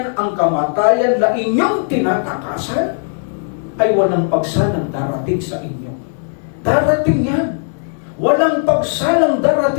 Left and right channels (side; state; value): right; silent; digital silence